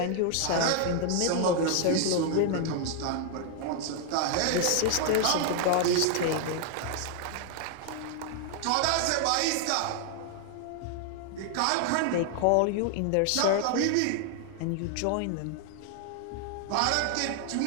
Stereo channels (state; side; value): different; both; correlation 0.00